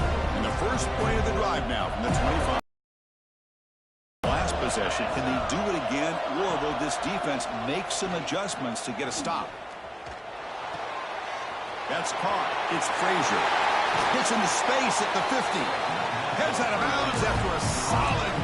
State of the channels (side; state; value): both; identical; correlation 1.00